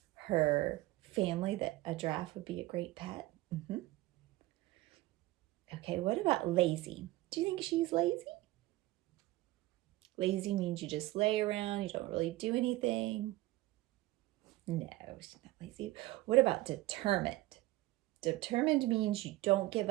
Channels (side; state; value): left; quieter; 18.4 dB